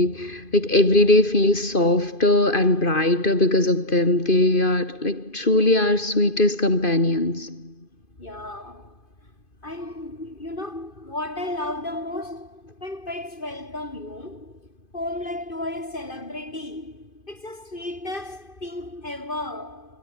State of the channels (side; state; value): right; late; 2.5 ms